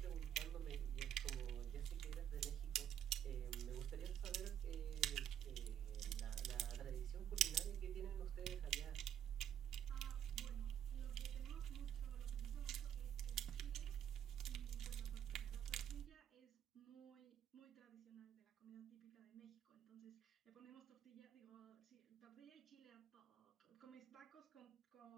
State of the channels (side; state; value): left; quieter; 10.0 dB